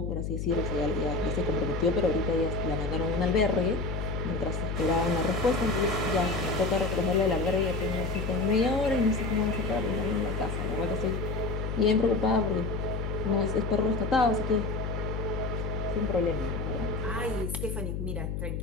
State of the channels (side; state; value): left; noise; hum, 3 dB below the sound